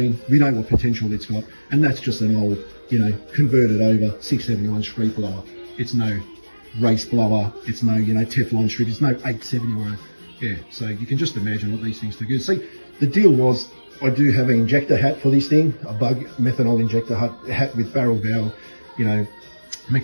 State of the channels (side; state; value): both; inverted; correlation -1.00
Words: we know what potential it's got, and that's just an old, you know, converted over 671 street blower. It's no race blower, it's no, you know, Teflon strip, it's no 871. Yeah, so you can just imagine what these things do. See, the deal was, I do have an injector hat for this thing, a bug methanol injector hat with barrel valve, you know,